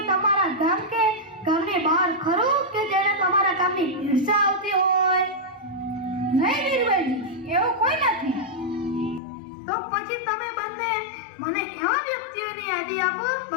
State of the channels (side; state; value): right; drops out; at 9.2 s